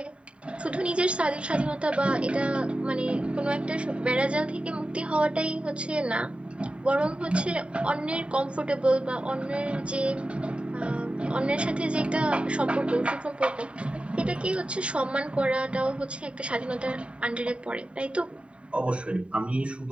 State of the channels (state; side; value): late; left; 0.059 ms